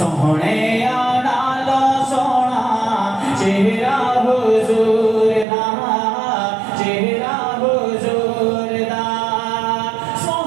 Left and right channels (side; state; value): left; drops out; at 5.5 s